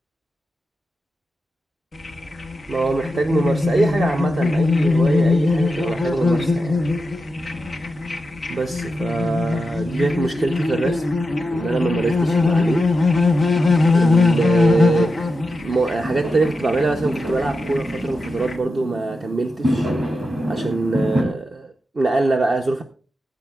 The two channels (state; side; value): normal; both; correlation 0.88